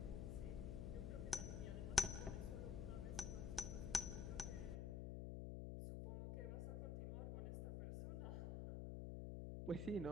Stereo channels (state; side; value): noise; left; hum, 1 dB below the sound